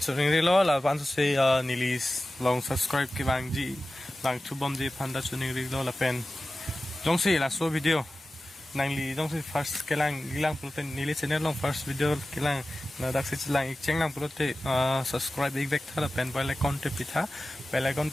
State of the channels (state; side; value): normal; both; correlation 0.95